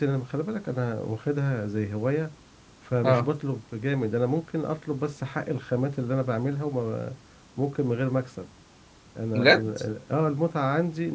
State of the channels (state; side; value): identical; both; correlation 1.00